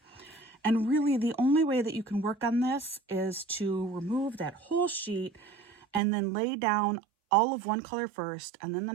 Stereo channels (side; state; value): left; drops out; at 6.0 s